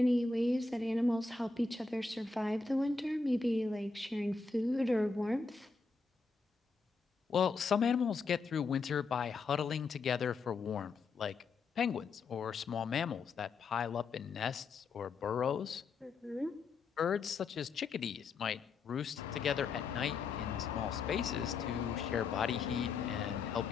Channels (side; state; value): right; quieter; 4.3 dB